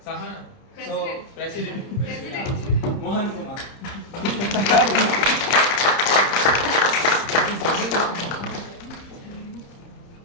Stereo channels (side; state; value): right; late; 30 ms